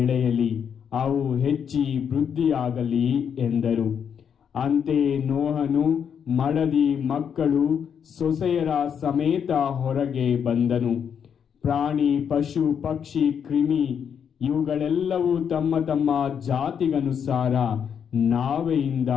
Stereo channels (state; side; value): quieter; right; 7.7 dB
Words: ಅವು ಹೆಚ್ಚಿ ವೃದ್ಧಿಯಾಗಲಿ ಎಂದರು. ಅಂತೆಯೇ ನೋಹನು ಮಡದಿ, ಮಕ್ಕಳು, ಸೊಸೆಯರ ಸಮೇತ ಹೊರಗೆ ಬಂದನು. ಪ್ರಾಣಿ, ಪಶು, ಪಕ್ಷಿ, ಕ್ರಿಮಿ ಇವುಗಳೆಲ್ಲವೂ ತಮ್ಮ ತಮ್ಮ ಜಾತಿಗನುಸಾರ ನಾವೆಯಿಂದ